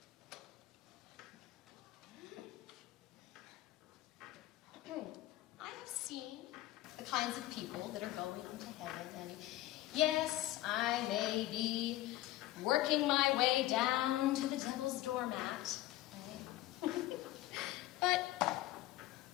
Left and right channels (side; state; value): right; quieter; 15.9 dB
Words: I have seen the kinds of people that are going into heaven, and yes, I may be working my way down to the devil's doormat, right? But